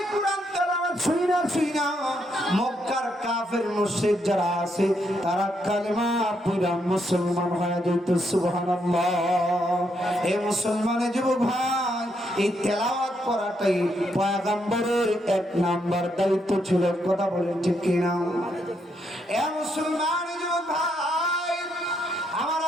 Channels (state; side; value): normal; both; correlation 0.77